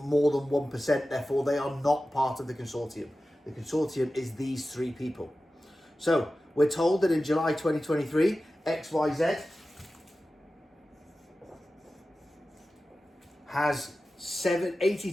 more than 1%. Therefore, they are not part of the consortium. The consortium is these three people. So we're told that in July 2023, XYZ has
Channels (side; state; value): both; normal; correlation 0.94